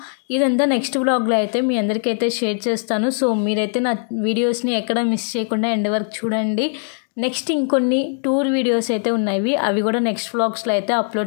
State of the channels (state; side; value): silent; right; 57 dB below the other